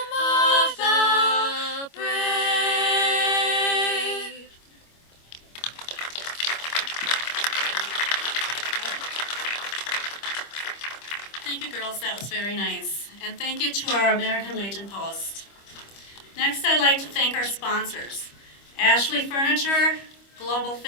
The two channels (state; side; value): late; right; 25 ms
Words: of the brave? Thank you, girls. That was very nice. And thank you to our American Legion Post. Next, I'd like to thank our sponsors: Ashley Furniture, Global